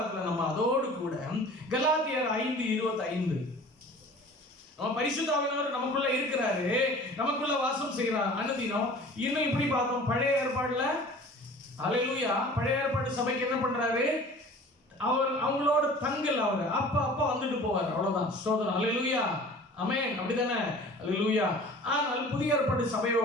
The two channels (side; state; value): both; normal; correlation 0.44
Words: நம்ம அதோடு கூட கலாத்தியர் 5:25 நம்ம பரிசுத்த ஆவியானவர் நமக்குள்ள இருக்கிறாரு, நமக்குள்ள வாசம் செய்கிறார் அனுதினம். இன்னும் இப்படி பார்த்தோம் பழைய ஏற்பாடுல. அல்லேலூயா. பழைய ஏற்பாடு சபைக்கு என்ன பண்றாரு? அவர் அவங்களோட தங்கல், அவர் அப்ப வந்துட்டு போவார். அவ்வளவுதான். ஸ்தோத்திரம். அல்லேலூயா. ஆமென். அப்படிதானே? அல்லேலூயா. ஆனால் புதிய ஏற்பாடு